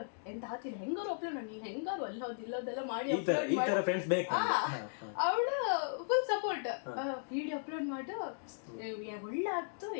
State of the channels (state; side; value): silent; right; digital silence